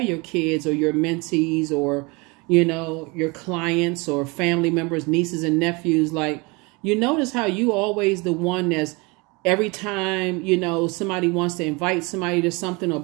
kids or your mentees or, you know, your clients or family members, nieces and nephews, like, you notice how you always the one that's every time, you know, somebody wants to invite somebody to something or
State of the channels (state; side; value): quieter; left; 27.3 dB